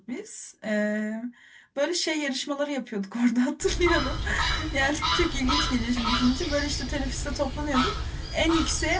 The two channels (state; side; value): identical; both; correlation 1.00